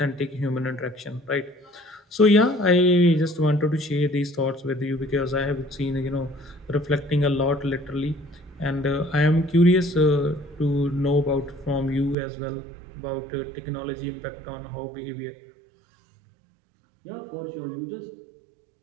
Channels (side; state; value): left; drops out; at 12.2 s